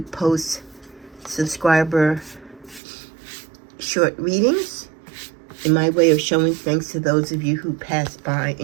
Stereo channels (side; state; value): left; drops out; at 2.8 s